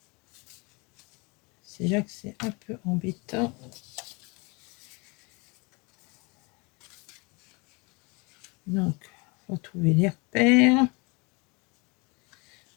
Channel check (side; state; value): right; quieter; 28.7 dB